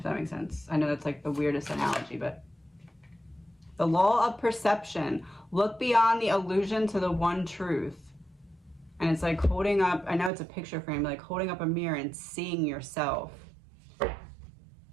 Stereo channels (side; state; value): left; drops out; at 10.3 s